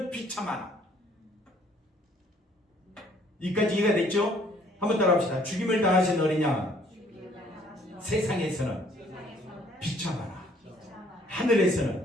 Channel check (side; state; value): both; normal; correlation 0.61